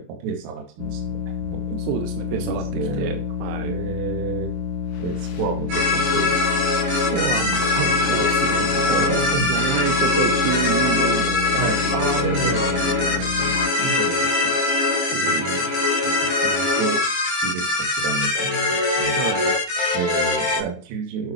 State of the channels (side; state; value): left; late; 23 ms